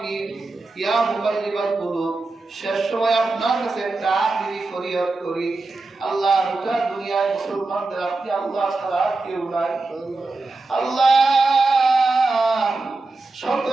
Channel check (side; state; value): left; quieter; 3.4 dB